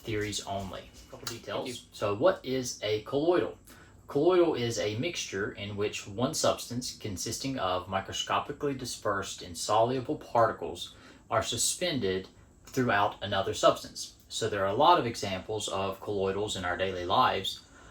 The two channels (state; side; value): identical; both; correlation 1.00